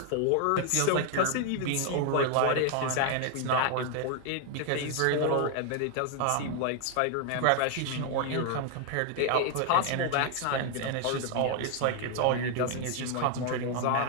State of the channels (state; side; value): different; both; correlation 0.00